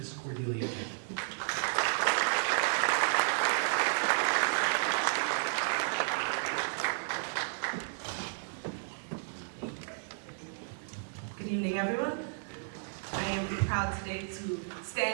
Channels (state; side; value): silent; left; digital silence